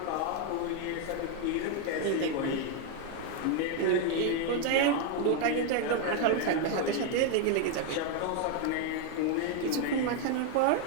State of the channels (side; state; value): both; different; correlation 0.00